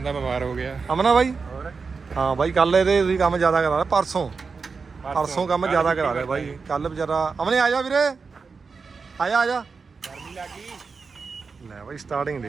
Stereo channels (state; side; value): quieter; left; 4.9 dB